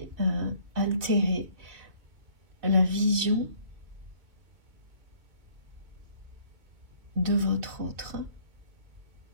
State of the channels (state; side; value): late; left; 2.6 ms